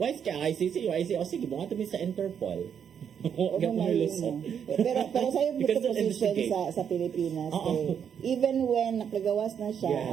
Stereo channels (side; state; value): left; quieter; 8.0 dB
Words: kay ang ICC o sige bunga mi sa Interpol. pero sa yung position sa Pilipinas even when nakagawas na siya